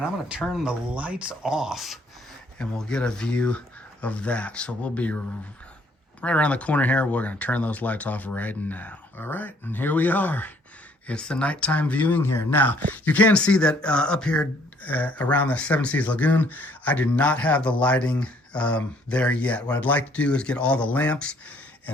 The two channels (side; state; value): both; normal; correlation 0.63